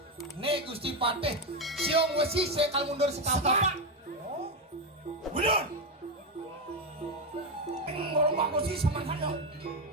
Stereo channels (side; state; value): both; normal; correlation 0.09